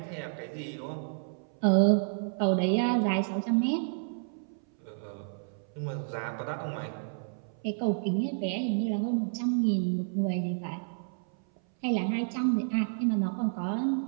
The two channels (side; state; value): left; silent; 58 dB below the other